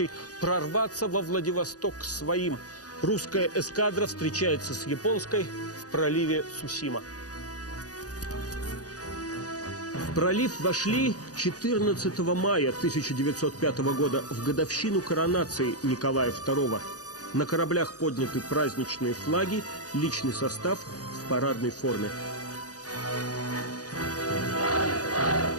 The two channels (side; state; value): right; late; 0.67 ms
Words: прорваться во Владивосток к своим. Русская эскадра встречается с японской в проливе Цусима. В пролив вошли 14 мая 1905 года, в годовщину коронации Николая II. На кораблях подняты праздничные флаги, личный состав в парадной форме.